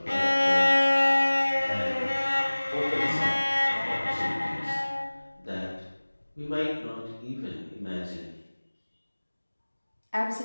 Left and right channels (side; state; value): both; inverted; correlation -1.00